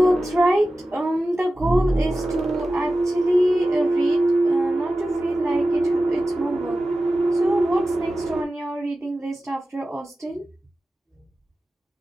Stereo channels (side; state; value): both; normal; correlation 0.94